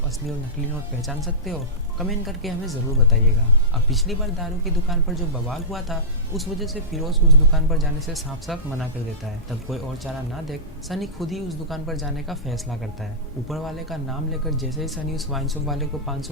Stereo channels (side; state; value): both; normal; correlation -0.16